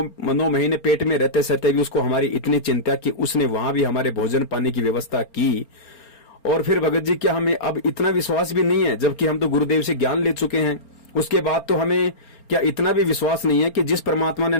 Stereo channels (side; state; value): right; late; 4.3 ms